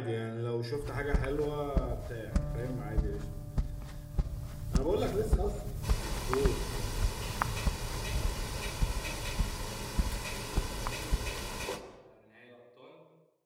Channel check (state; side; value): identical; both; correlation 1.00